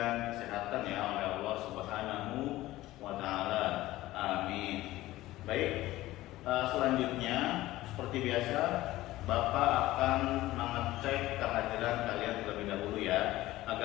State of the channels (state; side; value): quieter; right; 16.7 dB